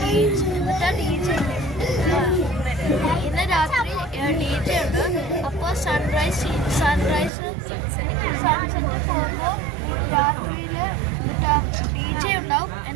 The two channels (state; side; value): drops out; left; at 7.3 s